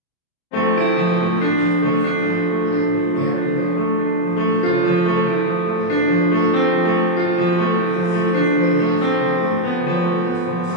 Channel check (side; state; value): right; late; 28 ms